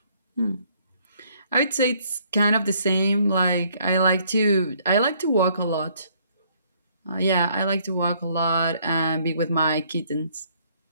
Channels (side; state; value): both; inverted; correlation -0.65